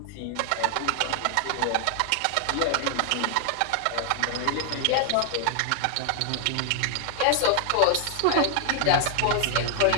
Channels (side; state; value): both; different; correlation 0.00